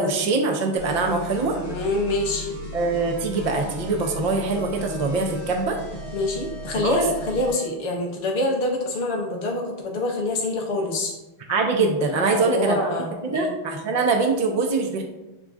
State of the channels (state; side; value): late; right; 6.7 ms